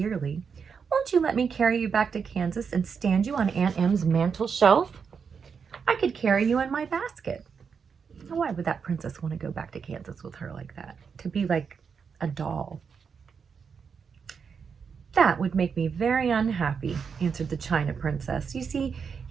Won't you let me carry you back to Kansas and stand you on Aunt Em's mantel shelf? I could carry you in my basket." Now, why would that princess want to go back to Kansas with her like that? To be like a doll. "That would make me very unhappy," answered the China princess. "You see,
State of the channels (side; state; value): left; quieter; 6.2 dB